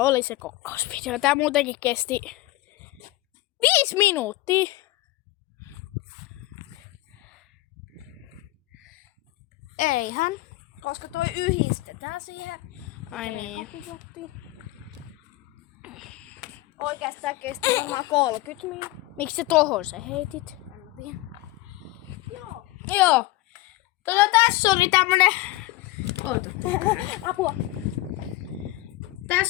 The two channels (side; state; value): right; quieter; 18.5 dB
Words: oli se kokkausvideo. Tää muutenkin kesti 5 minuuttia. Eihän. Koska toi yhdistetään siihen. Ai niin. Oikeastaan kesti ihan 30 minuuttia. Miksi se tohon se heitit? Joo. Joo. Tässä oli tämmönen... Oota. Apua.